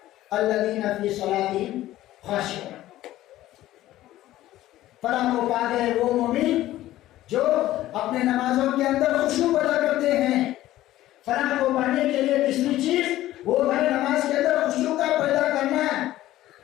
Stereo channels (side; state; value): right; quieter; 14.8 dB